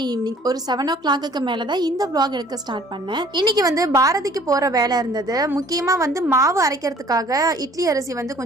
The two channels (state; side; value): normal; both; correlation 0.53